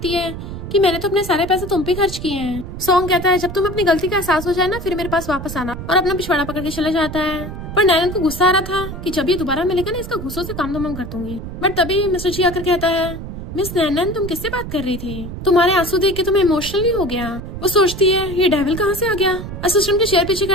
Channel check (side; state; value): right; noise; rumble, 9 dB below the sound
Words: है कि मैंने तो अपने सारे पैसे तुम पे खर्च किए हैं। सॉन्ग कहता है, जब तुम अपनी गलती का एहसास हो जाए ना फिर मेरे पास वापस आना, और अपना पिछवाड़ा पकड़ के चला जाता है। पर नैनन को गुस्सा आ रहा था कि जब ये दोबारा मिलेगा ना इसका गुस्सों से काम तमाम कर दूंगी। बट तभी मिस्टर जी आकर कहता है, मिस नैनन, तुम किससे बात कर रही थी? तुम्हारे आंसू देख के तुम्हें इमोशनली हो गया। वो सोचती है, ये डेविल कहाँ से आ गया? असिस्टेंट के चेयर पीछे